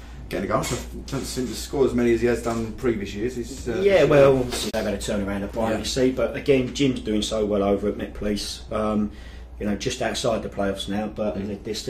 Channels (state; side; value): identical; both; correlation 1.00